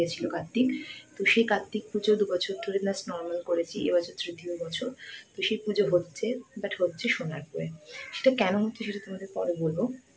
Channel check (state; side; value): identical; both; correlation 1.00